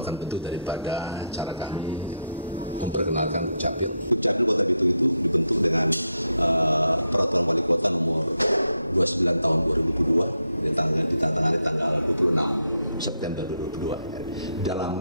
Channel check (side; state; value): both; inverted; correlation -0.80